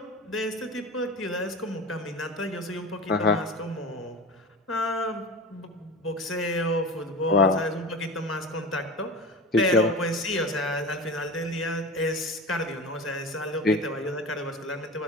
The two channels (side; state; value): both; normal; correlation 0.31